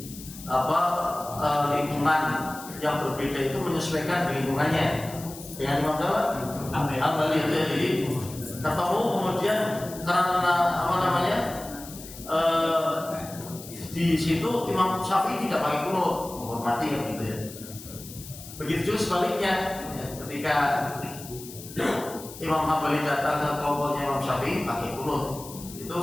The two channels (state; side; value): noise; left; hiss, 15 dB below the sound